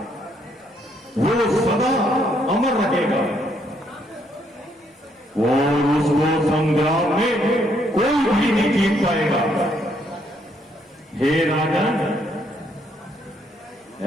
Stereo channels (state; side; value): normal; both; correlation 0.71